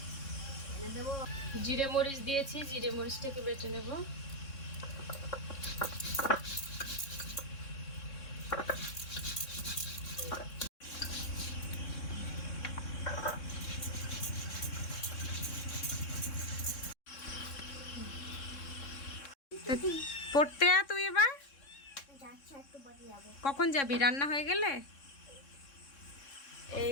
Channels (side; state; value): right; late; 3.6 ms